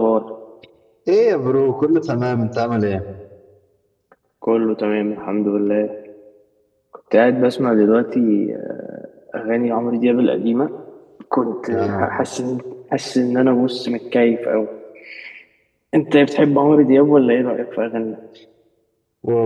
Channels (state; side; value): identical; both; correlation 1.00